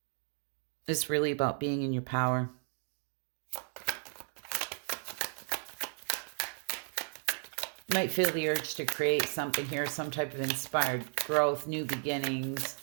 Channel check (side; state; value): left; silent; 55 dB below the other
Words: It's really about being in your power. You might feel the urge to create something here, some type of inspired growth, new beginnings,